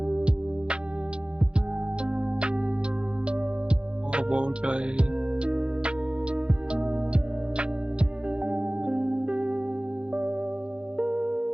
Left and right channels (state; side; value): late; left; 0.054 ms